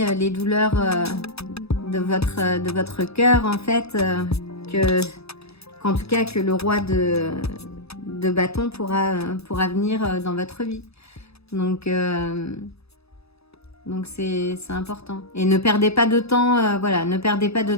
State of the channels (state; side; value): late; right; 0.79 ms